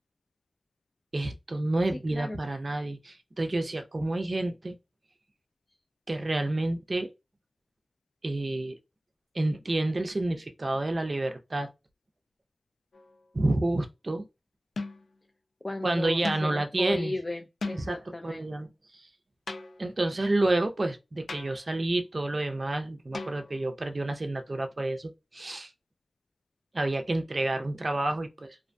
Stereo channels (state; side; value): normal; both; correlation 0.98